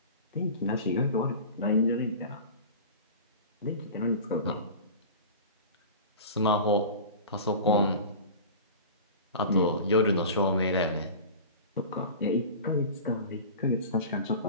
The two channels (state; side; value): inverted; both; correlation -0.35